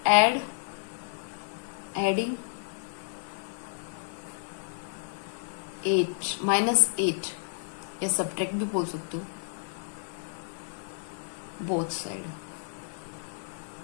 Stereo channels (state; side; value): silent; right; 57 dB below the other